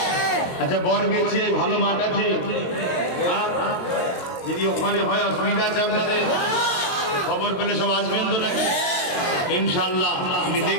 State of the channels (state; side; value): late; right; 22 ms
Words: আচ্ছা বরগেছিয়ায় ভালো মাঠ আছে, যদি ওখানে হয় অসুবিধা আছে আপনাদের, খবর পেলে সব আসবেন তো নাকি? ইনশাআল্লাহ আমি